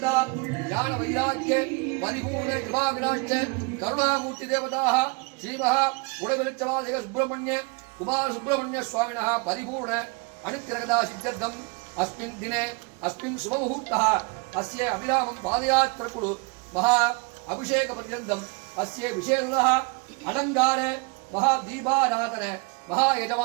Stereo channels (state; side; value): quieter; left; 30.3 dB